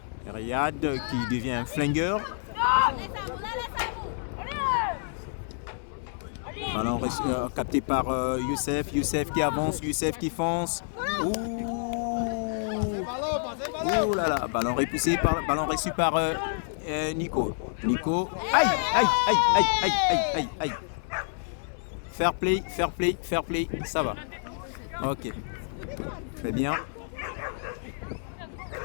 Riyad qui devient un flingueur. Ballon capté par Youssef. Youssef qui avance, Youssef qui fonce. Ouh là là. Ballon reçu par Nico. Nico. Aïe. Fair play. Ça va. Ok. Très bien.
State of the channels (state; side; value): silent; right; 59 dB below the other